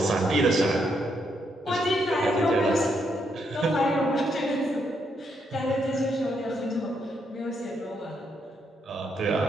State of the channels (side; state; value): both; normal; correlation 0.77